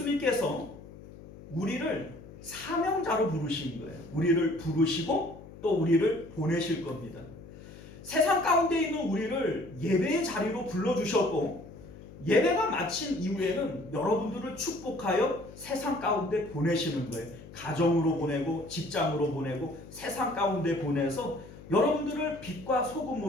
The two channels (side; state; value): left; noise; hum, 17 dB below the sound